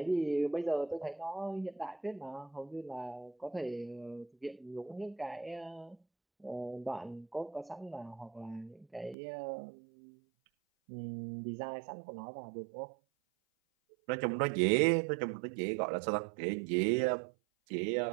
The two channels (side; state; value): left; drops out; at 9.2 s